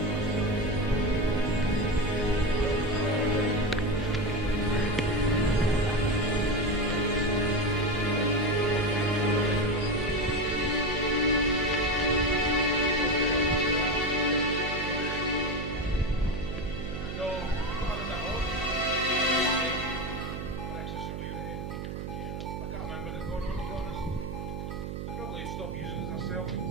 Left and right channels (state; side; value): noise; right; hum, 6 dB below the sound